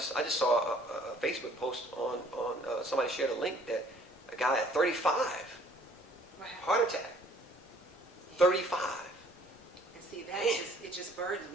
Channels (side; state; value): both; normal; correlation 0.57